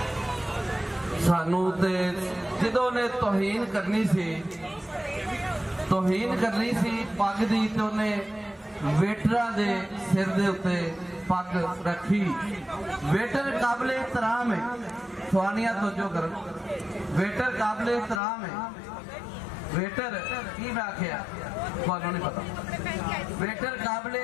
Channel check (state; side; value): drops out; right; at 18.2 s